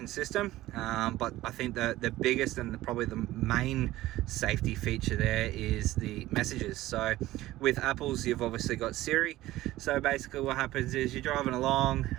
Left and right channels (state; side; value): quieter; left; 16.3 dB